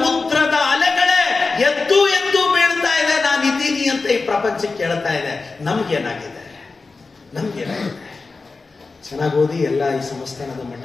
ಅಲೆಗಳೇ ಎದ್ದು ಎದ್ದು ಬೀಳ್ತಾ ಇದೆ, ನಾನು ಇದ್ದೀನಿ ಅಂತ ಈ ಪ್ರಪಂಚಕ್ಕೆ ಹೇಳ್ತಾ ಇದೆ. ನಮ್ಗೇನಾಗಿದೆ? ಚೆನ್ನಾಗಿ ಓದಿ. ಎಲ್ಲ ಈ ಸಂಸ್ಥಾನದ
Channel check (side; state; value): right; quieter; 4.0 dB